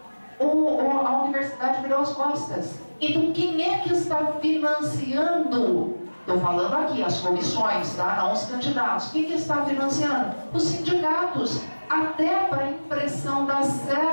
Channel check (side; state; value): both; inverted; correlation -1.00